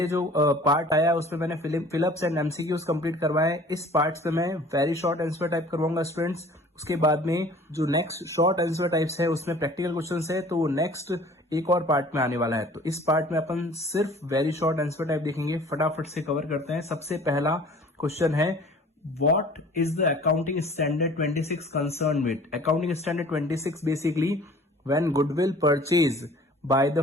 जो पार्ट आया उसमें मैंने फिलअप्स एंड एमसीक्यूज कंप्लीट करवाए। इस पार्ट पे मैं वेरी शॉर्ट आंसर टाइप करवाऊंगा स्टूडेंट्स। उसके बाद में जो नेक्स्ट शॉर्ट आंसर टाइप्स है उसमें प्रैक्टिकल क्वेश्चंस है, तो वो नेक्स्ट एक और पार्ट में आने वाला है। तो इस पार्ट में अपन सिर्फ वेरी शॉर्ट आंसर टाइप देखेंगे, फटाफट से कवर करते हैं। सबसे पहला क्वेश्चन है, What is the accounting standard 26 concerned with? Accounting standard 26 basically when goodwill purchase by the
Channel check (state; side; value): normal; both; correlation 0.49